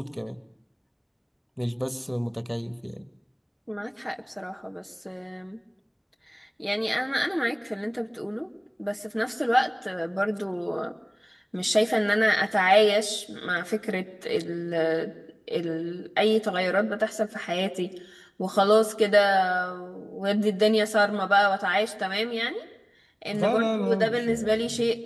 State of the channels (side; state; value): both; identical; correlation 1.00